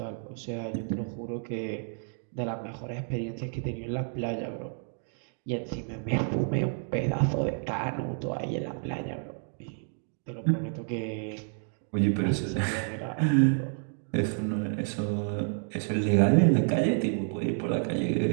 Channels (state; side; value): silent; left; 58 dB below the other